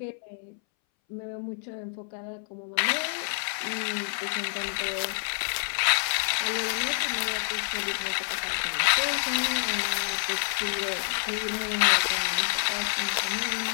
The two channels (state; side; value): silent; right; 59 dB below the other